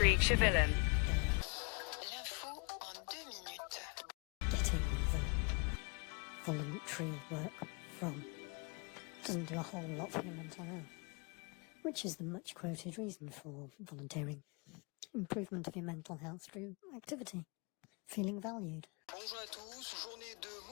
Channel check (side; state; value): right; quieter; 34.3 dB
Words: Chevillen. L'info en 2 minutes. Getting the voluntary work from doesn't do a whole lot for your mental health, which is the much quoted reason for volunteering. Improvement of your mental health through activity, feeling valued. Bonjour à tous, journée de